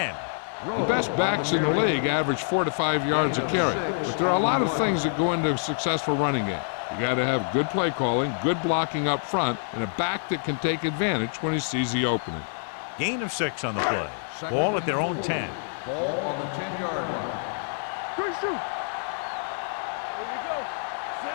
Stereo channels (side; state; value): right; silent; digital silence